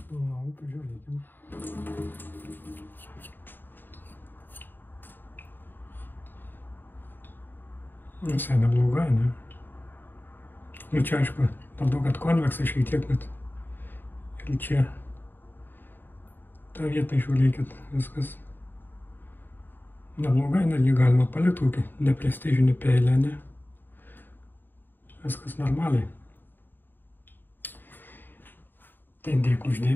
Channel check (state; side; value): late; right; 0.093 ms